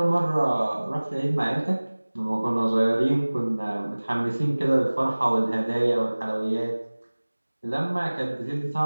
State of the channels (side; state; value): both; inverted; correlation -1.00